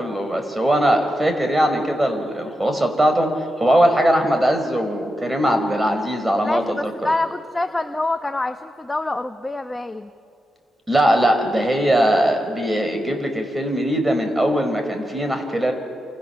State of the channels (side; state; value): both; normal; correlation 0.88